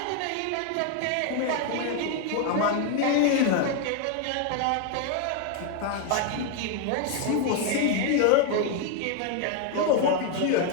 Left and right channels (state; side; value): different; both; correlation 0.01